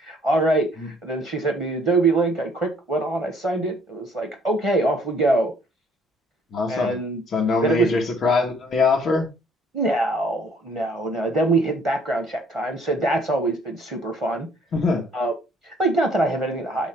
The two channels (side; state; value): both; normal; correlation 0.61